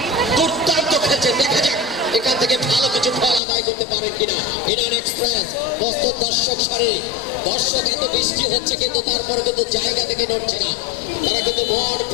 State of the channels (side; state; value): right; drops out; at 3.4 s